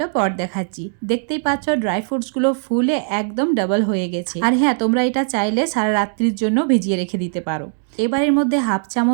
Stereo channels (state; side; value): silent; left; digital silence